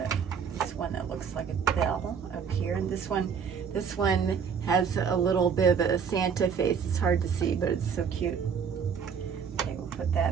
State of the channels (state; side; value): quieter; left; 6.7 dB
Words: this one that looks like a bell up here, and this one has a little bit of a Santa face. It's hard to see, but it's so cute. Okay, we'll put